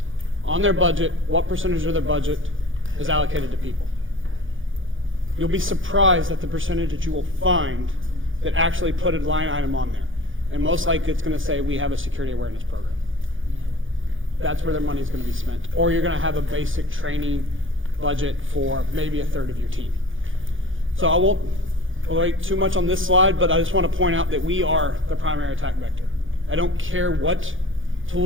on their budget, what percentage of their budget is allocated to people. You'll be surprised at the percentage that you will find that actually put a line item on there. And most likely it's going to say, we have a security awareness program. That's where their money is going to be spent. Or you're going to have a basic training budget for maybe a third of your team. So I won't wait too much on this slide, but I just want to point out that we are the primary attack vector. I don't care what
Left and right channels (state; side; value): late; left; 0.58 ms